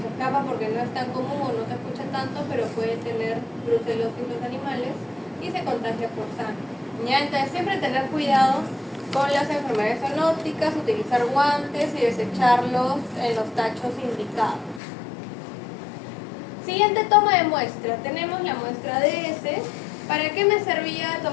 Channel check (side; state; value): right; drops out; at 14.8 s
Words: escapa porque no es tan común o no se escucha tanto, pero puede tener brucelosis los animales y se contagia por sangre. ¿Ya? Entonces siempre tener cuidado con las enfermedades zoonóticas, utilizar guantes y desecharlos en los tachos indicados. Siguiente toma de muestra. Tenemos la muestra de heces. ¿Para qué me servía